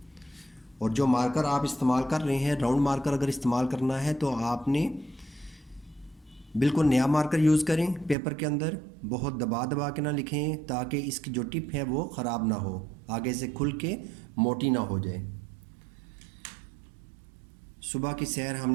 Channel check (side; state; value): left; drops out; at 8.2 s